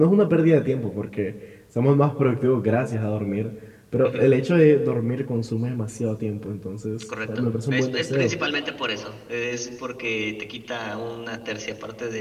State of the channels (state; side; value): identical; both; correlation 1.00